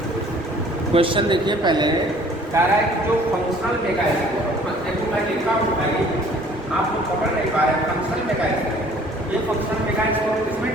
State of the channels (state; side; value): normal; both; correlation 0.54